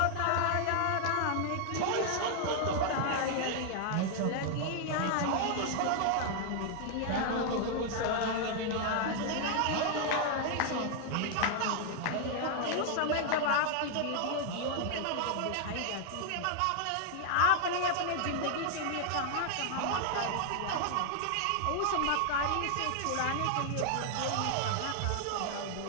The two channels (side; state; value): both; different; correlation 0.00